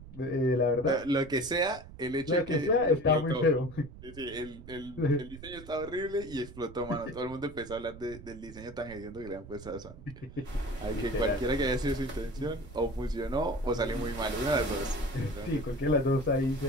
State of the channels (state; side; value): noise; right; rumble, 16 dB below the sound